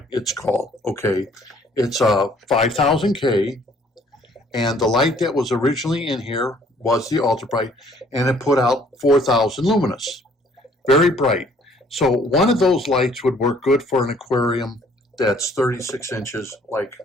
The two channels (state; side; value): normal; both; correlation 0.59